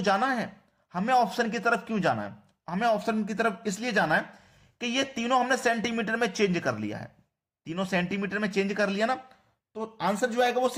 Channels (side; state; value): both; identical; correlation 1.00